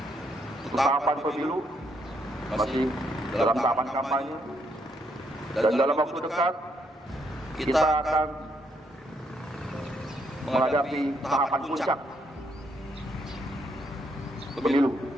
tahapan pemilu masih dalam tahapan kampanye, dan dalam waktu dekat kita akan menghadapi tahapan puncak pemilu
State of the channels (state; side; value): normal; both; correlation 0.74